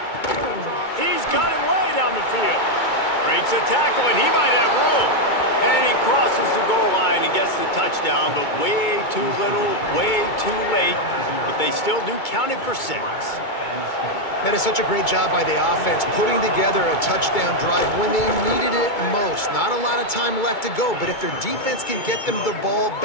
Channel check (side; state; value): right; late; 2.2 ms